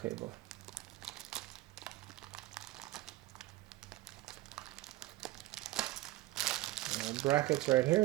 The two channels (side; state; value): left; quieter; 17.4 dB